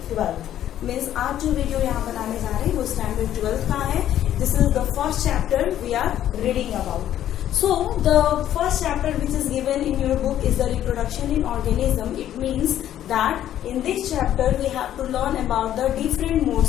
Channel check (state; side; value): quieter; right; 11.5 dB